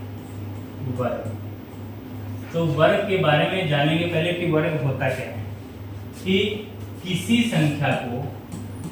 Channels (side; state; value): both; identical; correlation 1.00